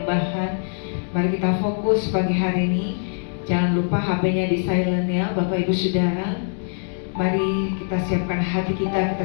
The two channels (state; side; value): silent; right; 64 dB below the other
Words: Mari kita fokus pagi hari ini. Jangan lupa HP-nya di silent ya Bapak Ibu Saudara. Mari kita siapkan hati kita